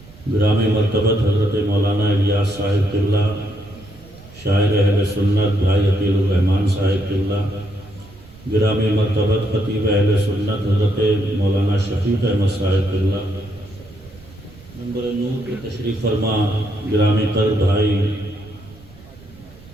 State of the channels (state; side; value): noise; right; rumble, 22 dB below the sound